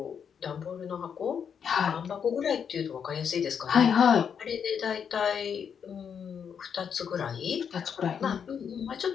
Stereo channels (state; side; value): quieter; right; 7.4 dB